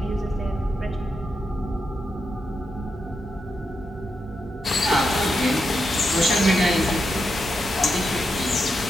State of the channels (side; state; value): both; normal; correlation 0.85